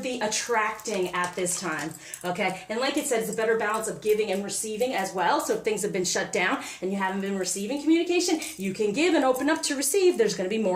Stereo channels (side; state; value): both; identical; correlation 1.00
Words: attracting at this time, okay? And like it said, it's a better balance of giving and receiving as well. So if things have been shut down and you haven't been receiving communication, you can give and open up to receive. There's going to be